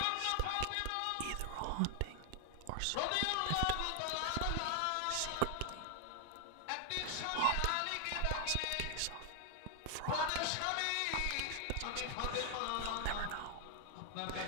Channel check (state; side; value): different; both; correlation 0.00